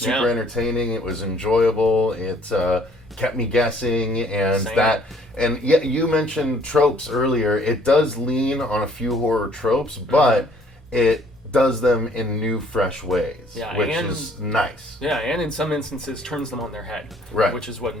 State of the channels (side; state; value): both; normal; correlation 0.60